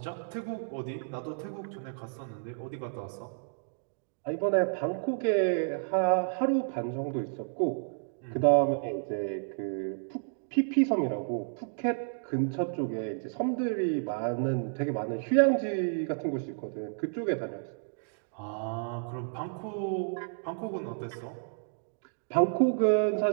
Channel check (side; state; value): left; silent; digital silence